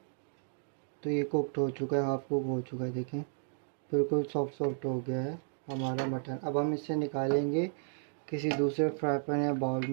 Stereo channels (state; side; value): silent; left; digital silence